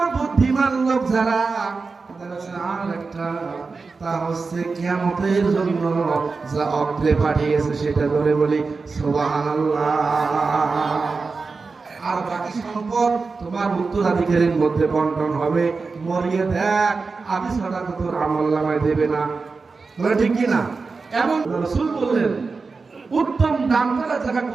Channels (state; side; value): quieter; left; 4.4 dB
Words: বুদ্ধিমান লোক যারা, আর একটা তা হচ্ছে কিয়ামতের জন্য যা অগ্রে পাঠিয়েছে সেটা ধরে বলি সুবহানাল্লাহ। আর বাকি সম্পদ তোমার উত্তরাধিকারীর মধ্যে বন্টন হবে। মরিয়ে দেখ আমি ছাড়া তো তোর আমলনামায় দেবে না, বলে ঠিক কি না? এবং রাসূল বললেন উত্তম দান করা জায়গা